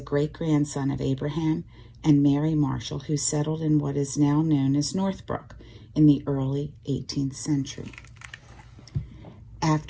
great-grandson of Abraham and Mary Marshall, who settled in what is now known as Northbrook in the early 18th century.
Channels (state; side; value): identical; both; correlation 1.00